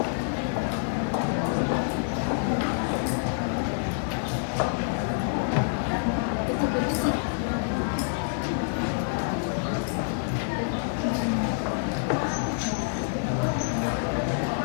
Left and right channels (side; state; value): right; silent; digital silence